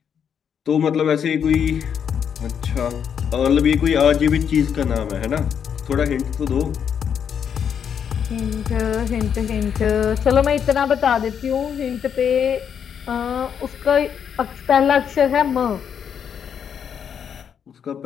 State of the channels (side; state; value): right; quieter; 7.9 dB